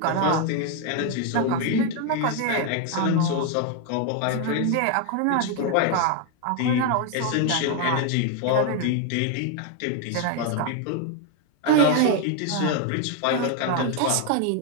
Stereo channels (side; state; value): both; different; correlation 0.01